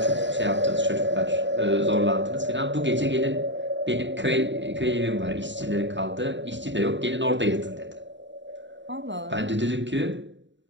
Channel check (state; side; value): late; left; 0.53 ms